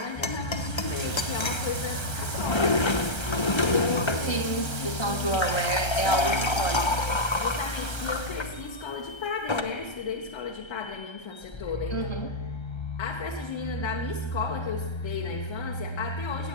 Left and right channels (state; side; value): late; right; 1.3 ms